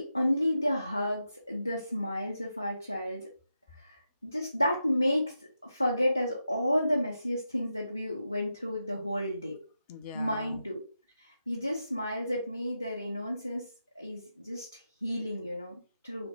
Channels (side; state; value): both; inverted; correlation -0.88